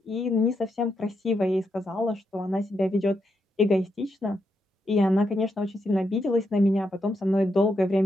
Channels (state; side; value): normal; both; correlation 0.82